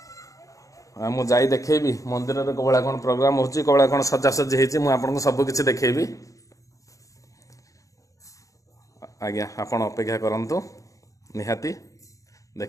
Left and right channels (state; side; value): late; right; 0.16 ms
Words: मुझे देखेबी मंदिर में कौड़ा कौन प्रोग्राम हो कौड़ा कौन सजासजी होती सबकि देखेबी। आज्ञा आपण अपेक्षा करंतु निहाती